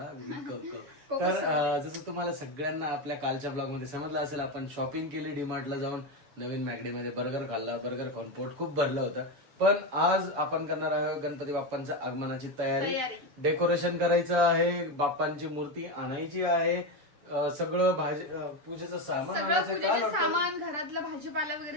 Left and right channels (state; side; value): late; left; 6.8 ms